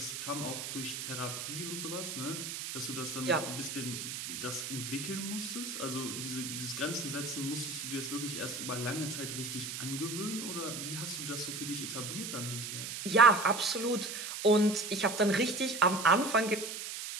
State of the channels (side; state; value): right; noise; hiss, 6 dB below the sound